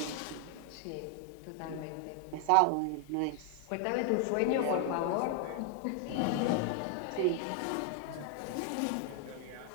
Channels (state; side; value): different; both; correlation 0.00